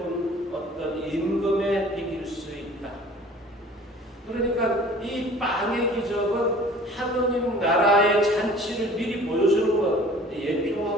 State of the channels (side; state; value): both; normal; correlation 0.48